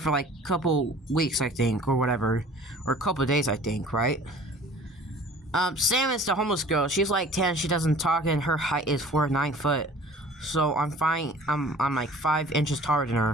like a couple weeks, I think, or whatever. Or a couple days, I think, right? Sam is the homeless girl. She's like 10, she doesn't talk, and her height is 4'9" foot. So I'm fine. I'm like 5 inches taller than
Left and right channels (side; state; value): both; normal; correlation 0.47